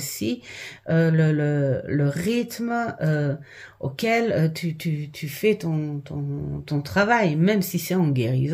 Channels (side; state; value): both; identical; correlation 1.00